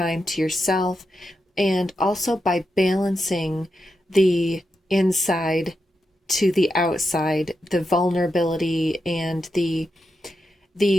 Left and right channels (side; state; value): both; normal; correlation 0.87